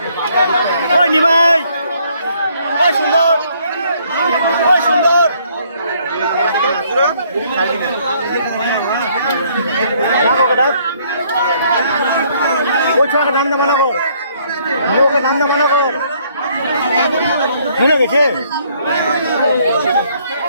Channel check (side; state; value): both; inverted; correlation -0.65